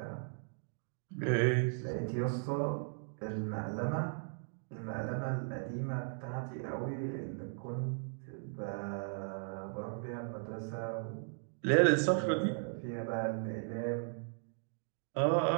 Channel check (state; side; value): silent; left; 53 dB below the other